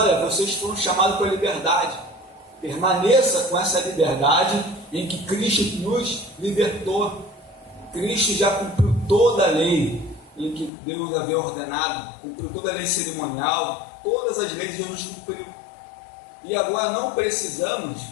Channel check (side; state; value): right; drops out; at 10.7 s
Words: vocês foram chamados para a liberdade. Permaneça com essa liberdade em que Cristo nos libertou. Cristo já cumpriu toda a lei em que Deus havia ordenado, cumpriu toda a lei cerimonial, todas as leis Jesus cumpriu. E agora não precisamos,